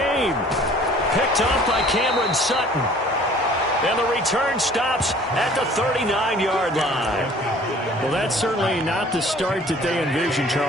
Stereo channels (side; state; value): both; normal; correlation 0.52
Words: Picked off by Cameron Sutton. And the return stops at the 39-yard line. Well, that's certainly not the start that they envisioned,